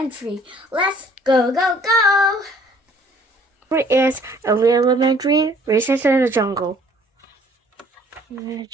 Let's go, go, go! Story is Eerie Elementary, Recess in the Jungle.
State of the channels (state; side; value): normal; both; correlation 0.57